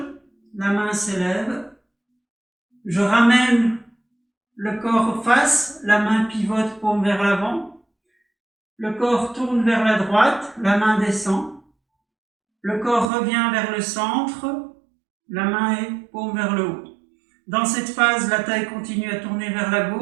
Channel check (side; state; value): left; drops out; at 13.1 s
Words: la main s'élève, je ramène le corps face, la main pivote, paume vers l'avant, le corps tourne vers la droite, la main descend, le corps revient vers le centre, la main est paume vers le haut. Dans cette phase, la taille continue à tourner vers la